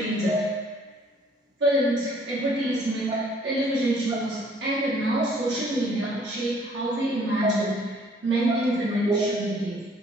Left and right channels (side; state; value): both; normal; correlation 0.60